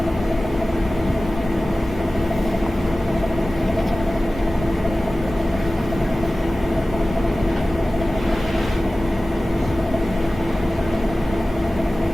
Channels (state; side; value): normal; both; correlation 0.96